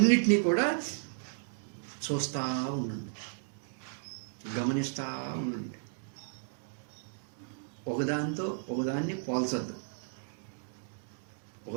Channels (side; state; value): left; silent; digital silence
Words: కూడా చూస్తూ ఉండండి, గమనిస్తూ ఉండండి. ఒకదాన్ని